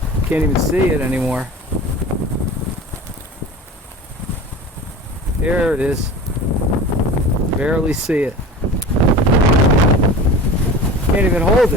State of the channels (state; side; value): normal; both; correlation 0.36